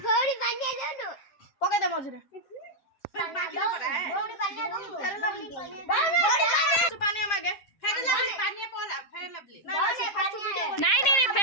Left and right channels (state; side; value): late; right; 7.4 ms